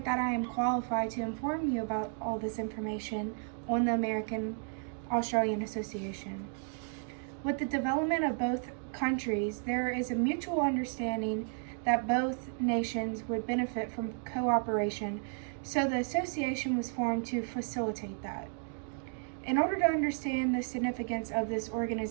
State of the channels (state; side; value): silent; left; 56 dB below the other